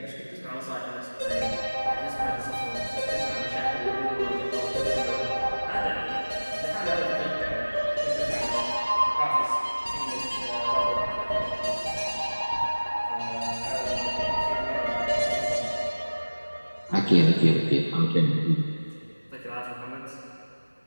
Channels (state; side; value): inverted; both; correlation -1.00